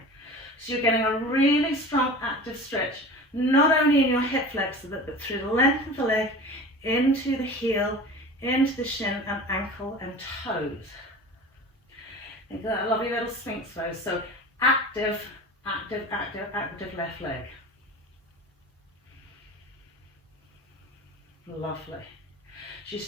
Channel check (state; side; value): normal; both; correlation 0.36